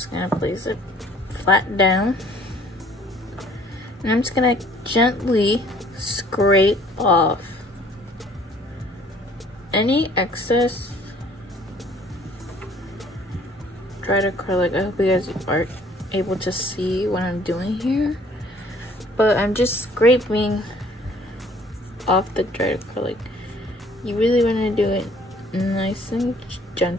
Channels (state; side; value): normal; both; correlation 0.57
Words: gonna place it flat down, and I'm just gonna gently scrape off any excess dried acrylic. I hope you guys are able to see what I'm doing here, but I'm just scraping off the dried acrylic. You really want to do it nice and